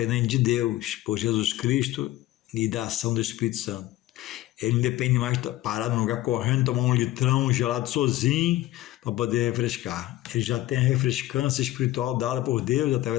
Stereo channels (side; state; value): right; quieter; 15.9 dB